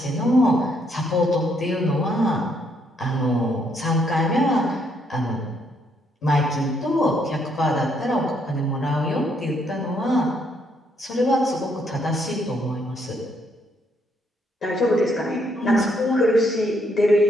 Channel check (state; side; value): normal; both; correlation 0.72